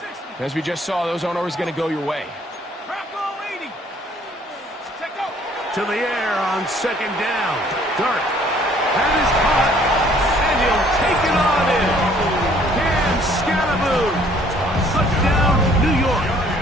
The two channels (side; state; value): both; normal; correlation 0.59